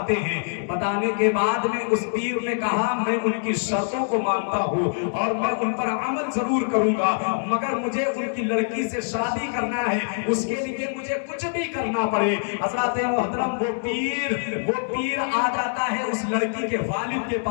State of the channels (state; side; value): silent; right; digital silence